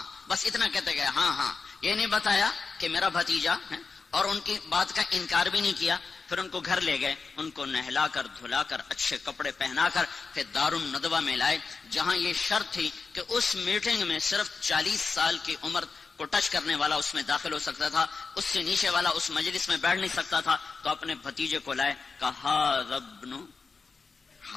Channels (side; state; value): right; quieter; 4.7 dB